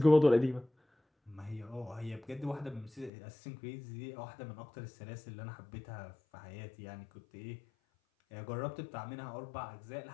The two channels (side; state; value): right; drops out; at 3.1 s